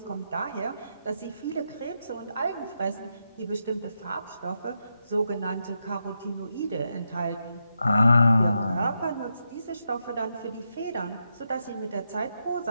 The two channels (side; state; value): both; inverted; correlation -0.84